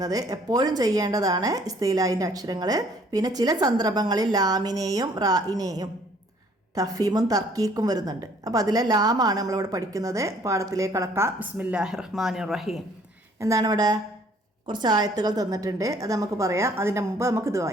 എപ്പോഴും ചെയ്യേണ്ടതാണ് ഇസ്തിലാഹിൻ്റെ അക്ഷരങ്ങൾ. പിന്നെ ചില സന്ദർഭങ്ങളിൽ ലാമിനെയും റായിനെയും തഫ്ഹീമും തർക്കീക്കും വരുന്നുണ്ട്. അപ്പോൾ അതിലെ ലാമാണ് നമ്മളിവിടെ പഠിക്കുന്നത്. പാഠത്തിലേക്ക് കടക്കാം. ബിസ്മില്ലാഹിർ റഹ്മാനിർ റഹീം. എന്താണ് ഇവിടെ കുറച്ച് ആയത്തുകൾ തന്നിട്ടുണ്ട്, അത് നമുക്ക് പറയാം. അതിൻ്റെ മുമ്പ് നമുക്കിത്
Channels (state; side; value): normal; both; correlation 0.59